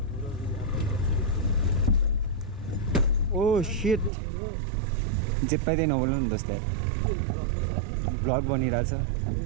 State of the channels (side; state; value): left; drops out; at 4.1 s